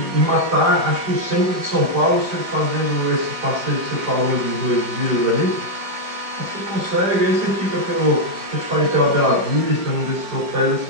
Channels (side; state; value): left; late; 5.0 ms